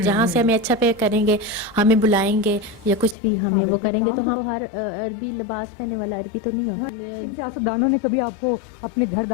جہاں سے ہمیں اچھا پے کریں گے ہمیں بلائیں گے یا کچھ بھی ہمیں وہ کریں گے. تو ہم ہر عربی لباس پہننے والا عربی تو نہیں ہوتا. ان سیاستدانوں نے کبھی آپ کو اپنے گھر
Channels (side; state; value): right; drops out; at 3.2 s